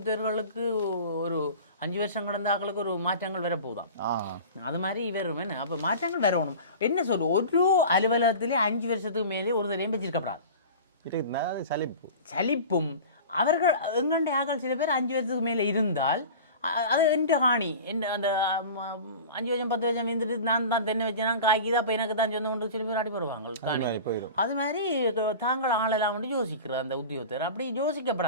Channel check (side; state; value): both; inverted; correlation -0.36